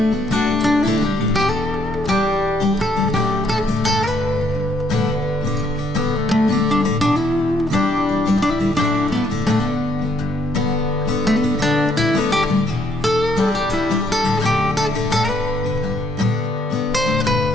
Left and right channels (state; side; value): normal; both; correlation 0.70